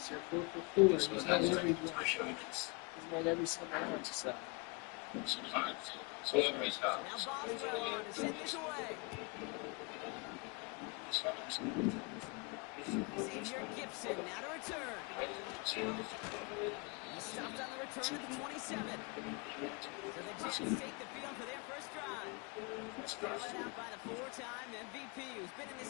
You're 4 for 4. He's made every one. He's made every single one. So. Now Boswell on to send this away. Xavier Gibson now to return. He stopped on the return at the 27. So the Jets take the field for their first drive. Led out by the 4-time MVP who's been in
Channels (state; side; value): quieter; right; 31.0 dB